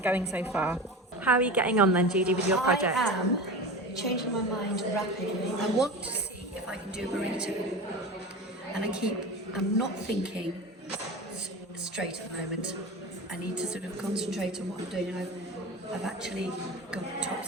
so far. How are you getting on then, Judy, with your project? I am changing my mind rapidly. I want to see if I can do a burrito. And I'm not thinking straight at the moment. I need to sort of concentrate on what I'm doing. And I've actually got top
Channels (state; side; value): normal; both; correlation 0.29